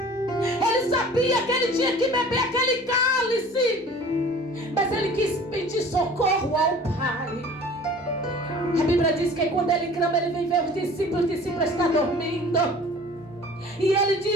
sabia que ele tinha que beber aquele cálice. Mas ele quis pedir socorro ao Pai. A Bíblia diz que quando ele clama, ele vem ver os discípulos estão dormindo. E ele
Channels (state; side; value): normal; both; correlation 0.46